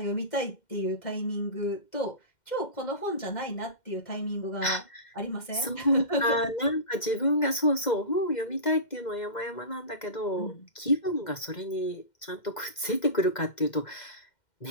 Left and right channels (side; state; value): right; late; 2.0 ms